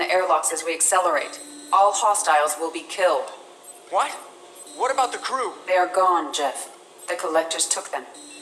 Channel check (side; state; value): both; identical; correlation 1.00